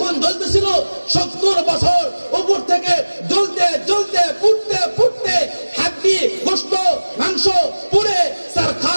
জ্বলতেছিল 70 বছর, উপর থেকে জ্বলতে জ্বলতে পুড়তে পুড়তে হাড্ডি গোশত মাংস পুড়ে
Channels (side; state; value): both; inverted; correlation -1.00